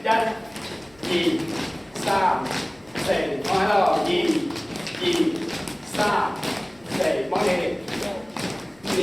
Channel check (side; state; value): left; noise; rumble, 30 dB below the sound